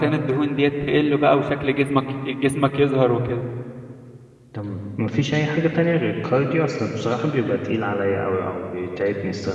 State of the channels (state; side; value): identical; both; correlation 1.00